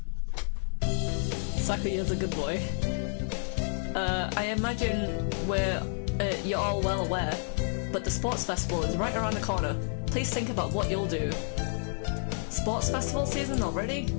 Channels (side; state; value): right; silent; digital silence